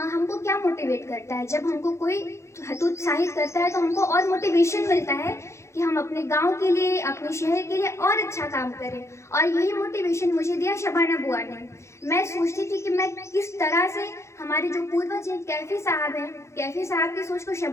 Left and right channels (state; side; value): late; right; 0.14 ms